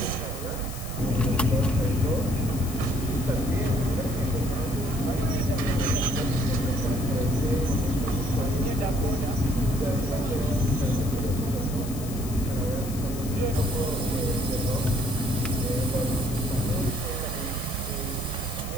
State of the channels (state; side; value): noise; left; hiss, 13 dB below the sound